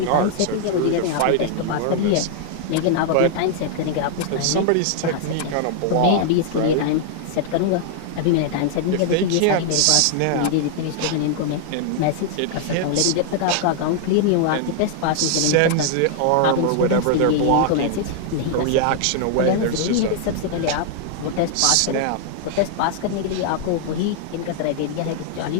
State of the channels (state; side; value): different; both; correlation 0.00